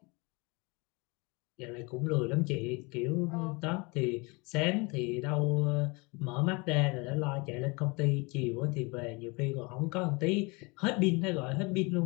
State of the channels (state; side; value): quieter; right; 28.3 dB